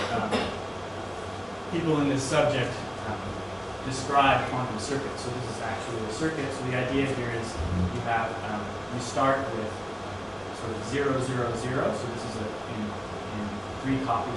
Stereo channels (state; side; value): identical; both; correlation 1.00